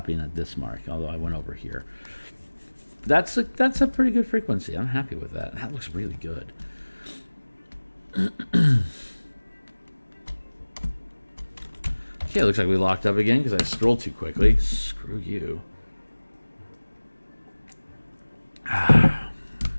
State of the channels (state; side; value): inverted; both; correlation -1.00